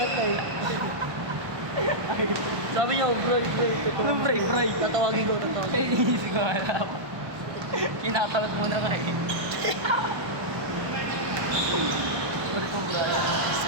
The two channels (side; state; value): left; late; 1.2 ms